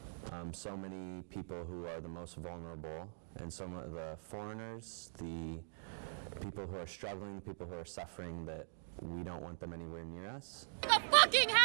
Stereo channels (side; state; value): left; silent; digital silence